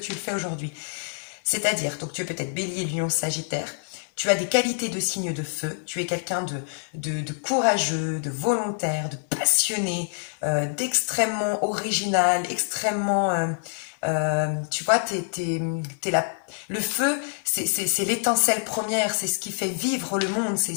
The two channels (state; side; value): silent; right; 60 dB below the other